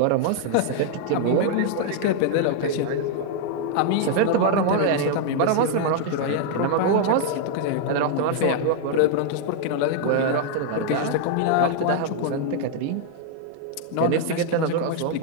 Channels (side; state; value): both; different; correlation 0.00